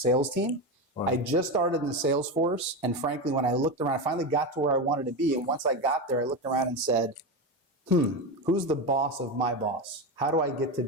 team. I just started in the sales force, and frankly, when I looked around, I finally got to where I wanted to be. And once I got there, I looked around and said, who's the boss of my boss? How do I get to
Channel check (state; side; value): normal; both; correlation 0.16